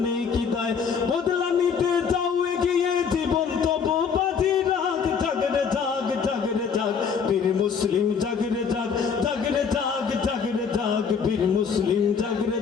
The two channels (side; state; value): right; quieter; 6.3 dB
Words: নেই কি দায় বদলা নিতে যাও এগিয়ে জীবন তবু বাজি রাখ জাগরে জাগ জাগরে জাগ বীর মুসলিম জাগরে জাগ জাগরে জাগ জাগরে জাগ বীর মুসলিম জাগরে